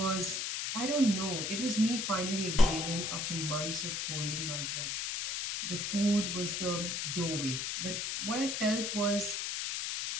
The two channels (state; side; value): noise; left; hiss, 2 dB below the sound